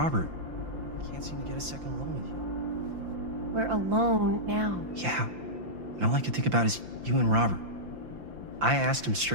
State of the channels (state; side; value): late; left; 5.8 ms